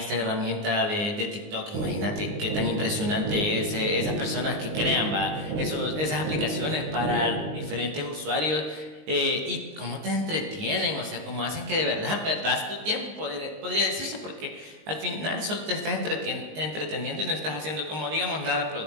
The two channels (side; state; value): left; late; 19 ms